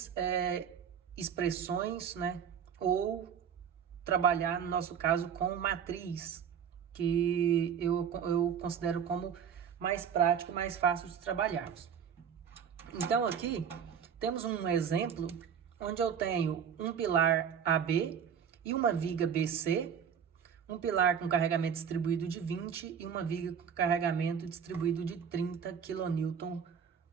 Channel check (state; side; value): quieter; left; 7.6 dB